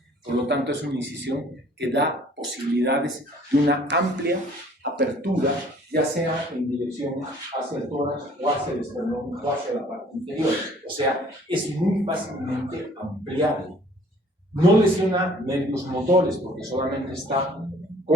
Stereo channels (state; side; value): normal; both; correlation 0.55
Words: Por lo tanto, es una incisión que da posibilidades de una amplia apertura, ya sea en dirección hacia el tórax o hacia el esternón o hacia la parte inferior. O sea, es muy fácilmente ampliable. No lesiona nervios motores porque solamente está